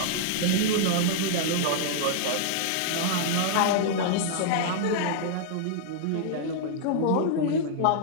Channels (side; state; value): both; different; correlation -0.01